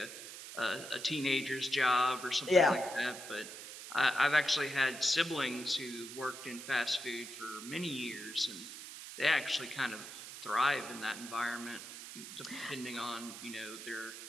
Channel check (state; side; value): noise; right; hiss, 11 dB below the sound